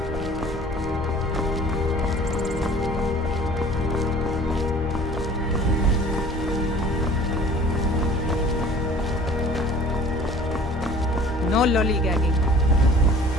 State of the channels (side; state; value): both; normal; correlation 0.48